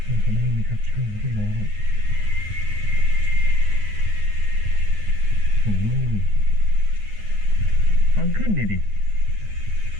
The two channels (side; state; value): left; late; 9.6 ms